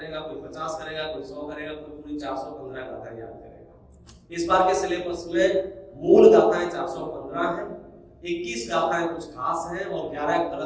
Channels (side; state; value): both; identical; correlation 1.00